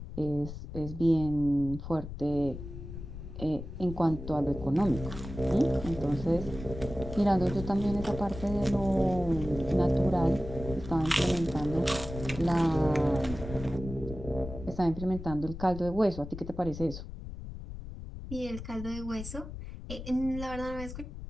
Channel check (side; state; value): left; noise; rumble, 10 dB below the sound